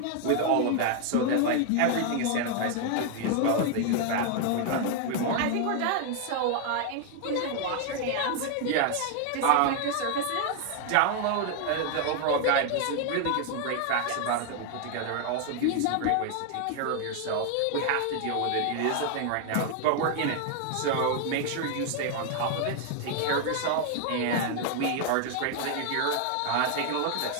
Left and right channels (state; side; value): different; both; correlation 0.00